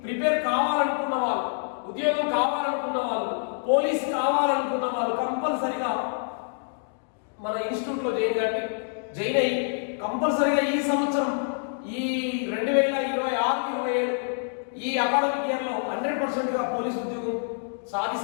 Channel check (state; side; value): silent; right; digital silence